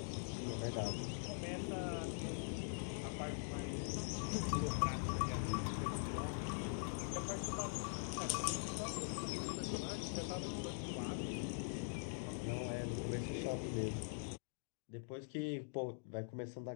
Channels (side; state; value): right; silent; digital silence